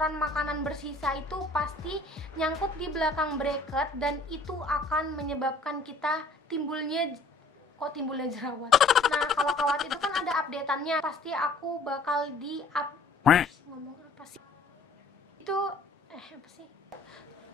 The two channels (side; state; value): right; quieter; 3.2 dB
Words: makanan bersisa itu pasti nyangkut di belakang bracket, dan itu akan menyebabkan kita timbulnya jerawat. Nah, kalau kawat itu kan ada updateannya. Pasti aku bakal ngomong apa sih? Itu apa sih?